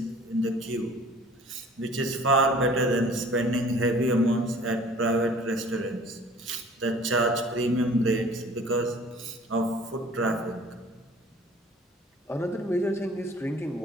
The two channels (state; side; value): normal; both; correlation 0.50